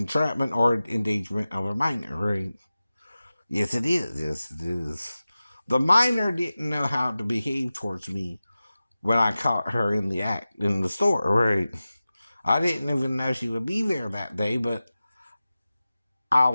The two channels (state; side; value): inverted; both; correlation -0.95